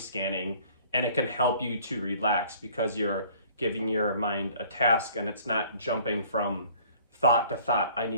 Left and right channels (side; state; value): both; inverted; correlation -0.54